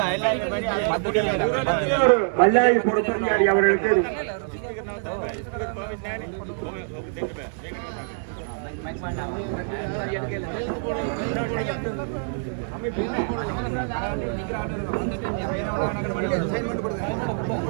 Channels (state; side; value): silent; left; digital silence